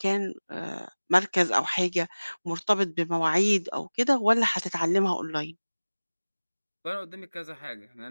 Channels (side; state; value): both; inverted; correlation -1.00